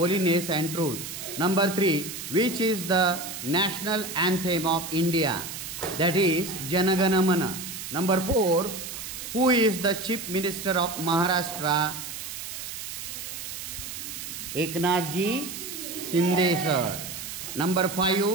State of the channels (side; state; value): right; noise; hiss, 8 dB below the sound